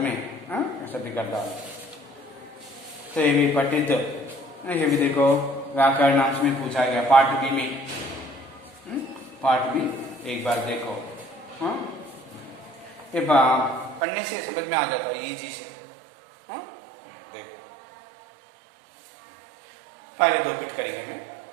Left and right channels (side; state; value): left; drops out; at 14.0 s